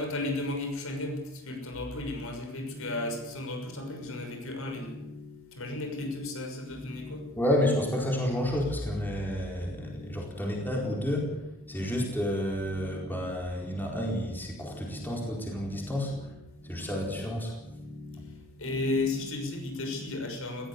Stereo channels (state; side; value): normal; both; correlation 0.53